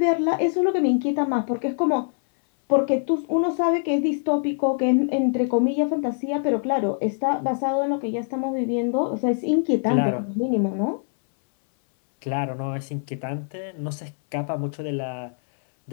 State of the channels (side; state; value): right; silent; 63 dB below the other